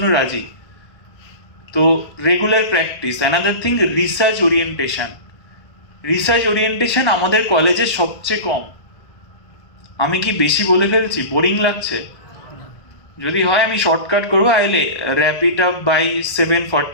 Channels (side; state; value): right; late; 1.3 ms